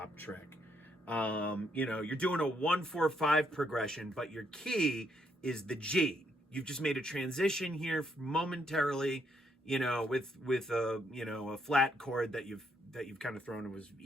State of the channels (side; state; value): both; normal; correlation 0.74